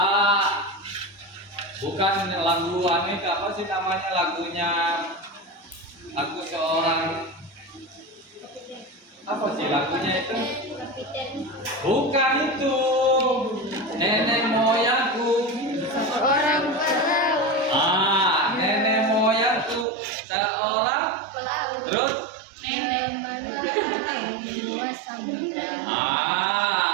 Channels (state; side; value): drops out; left; at 19.9 s